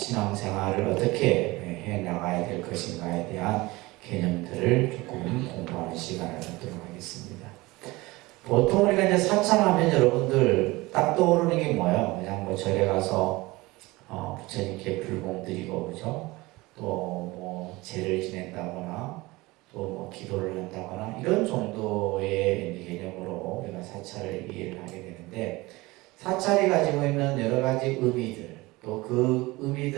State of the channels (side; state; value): left; quieter; 21.4 dB